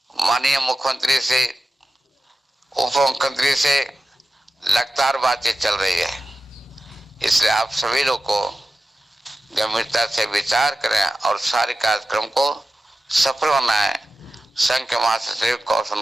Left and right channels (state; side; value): normal; both; correlation 0.93